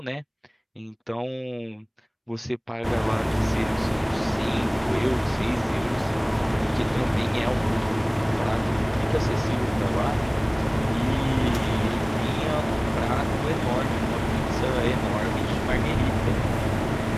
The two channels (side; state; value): both; identical; correlation 1.00